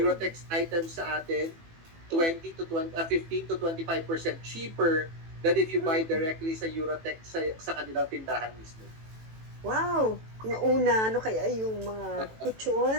items sa atin 15 to 25% cheaper than if you buy mm. directly sa Eurotex sa kanilang tindahan mismo. Wow. Yung una, ano kaya yung mga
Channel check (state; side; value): late; left; 18 ms